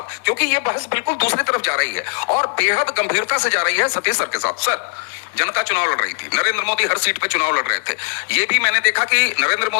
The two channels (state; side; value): silent; right; digital silence